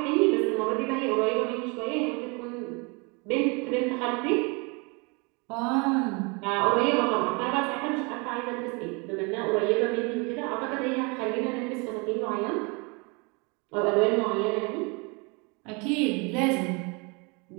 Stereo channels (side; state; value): left; quieter; 30.1 dB